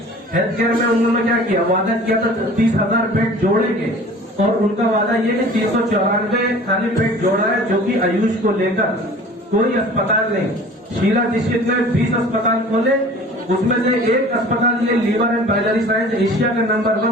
में उन्होंने क्या किया? वादा किया था 30,000 बेड जोड़ेंगे, और उनका वादा ये कि 394 खाली बेड जोड़ा है, जो कि आयुष को लेकर कोई अस्पताल नहीं। शीला दीक्षित ने 20 अस्पताल खोले, उसमें से एक अस्पताल ये liver and biliary science Asia का नंबर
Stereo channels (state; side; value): normal; both; correlation 0.45